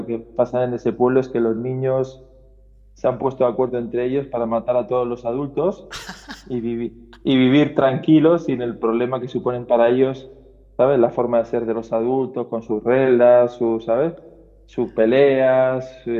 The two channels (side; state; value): both; identical; correlation 1.00